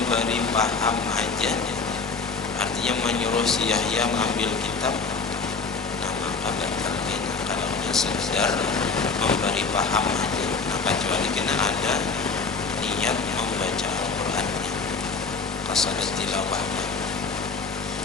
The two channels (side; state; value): right; quieter; 4.6 dB